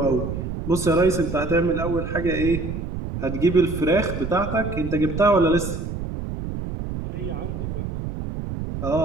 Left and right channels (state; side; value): noise; right; rumble, 5 dB below the sound